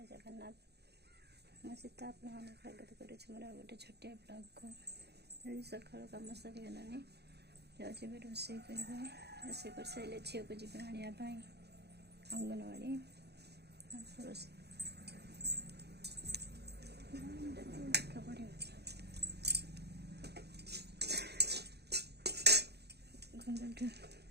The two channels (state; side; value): late; left; 0.48 ms